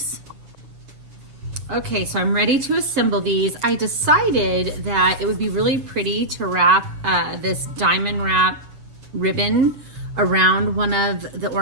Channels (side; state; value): left; late; 7.3 ms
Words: Okay, so I'm ready to assemble these. I decided that it would be really pretty to wrap this diamond wrap ribbon around one of the